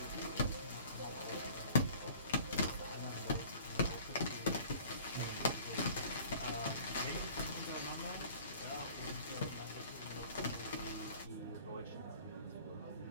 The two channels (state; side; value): inverted; both; correlation -0.49